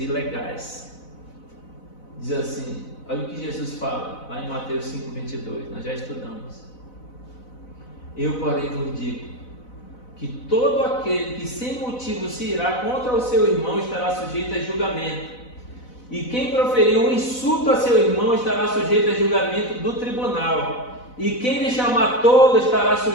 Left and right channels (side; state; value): right; late; 4.0 ms